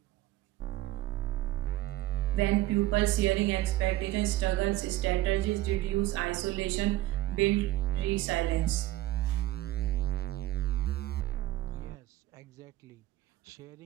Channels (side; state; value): left; quieter; 16.1 dB